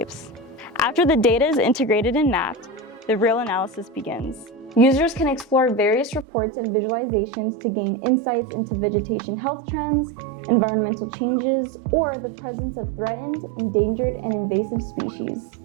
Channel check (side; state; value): left; drops out; at 6.2 s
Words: After the data is integrated and mapped, the real analysis begins. Users can explore various reports and visualizations to gain insights into vegetation health trends, environmental changes, or the presence of threatened, endangered, and invasive species.